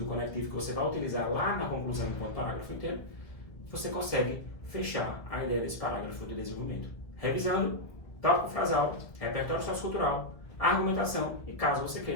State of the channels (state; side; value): late; right; 1.6 ms